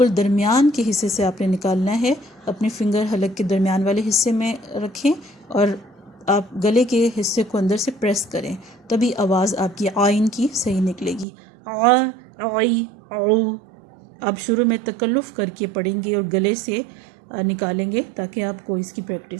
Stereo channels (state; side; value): drops out; left; at 11.2 s